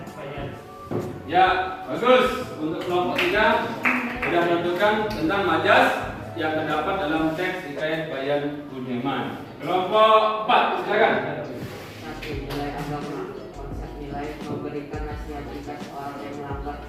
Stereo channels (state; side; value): identical; both; correlation 1.00